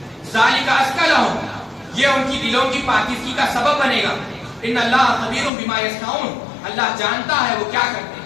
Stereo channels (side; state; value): right; drops out; at 5.5 s